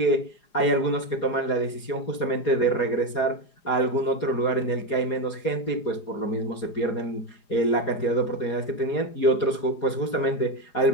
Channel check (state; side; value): late; right; 4.9 ms